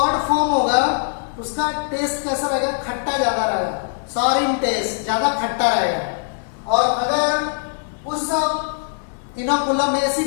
फॉर्म होगा उसका टेस्ट कैसा रहेगा खट्टा ज्यादा रहेगा सॉर इन टेस्ट ज्यादा खट्टा रहेगा। और अगर उस इनोकुलम में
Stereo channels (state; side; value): silent; right; digital silence